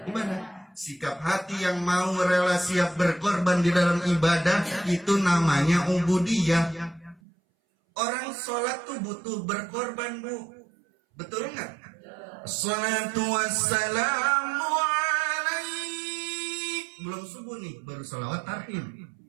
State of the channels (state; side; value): drops out; left; at 7.2 s